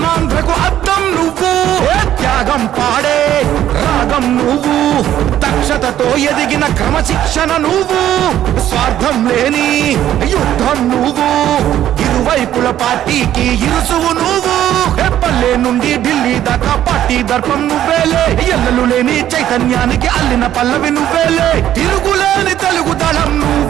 అర్థం నువ్వు. త్యాగం పాడే రాగం నువ్వు, దక్షతతో ఎదిగిన క్రమశిక్షణ నువ్వు. స్వార్థం లేని యుద్ధం నువ్వు, ఇరువైపుల పార్టీకి ఇరుసువు నువ్వు. పల్లె నుండి ఢిల్లీ దాకా పార్టీ దర్పం నువ్వేలే, ఎల్లలు లేని చైతన్యానికి అల్లిన పల్లవి నువ్వేలే. తిరుగులేని తెలుగు దళం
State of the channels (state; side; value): quieter; left; 11.8 dB